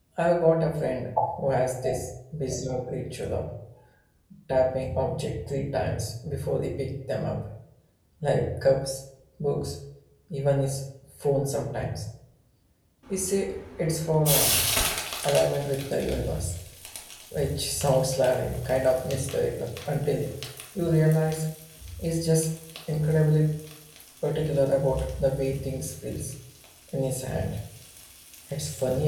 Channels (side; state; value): both; identical; correlation 1.00